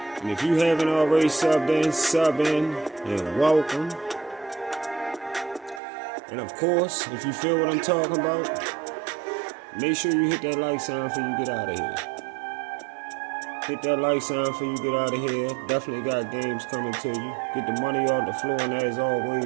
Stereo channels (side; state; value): left; drops out; at 5.8 s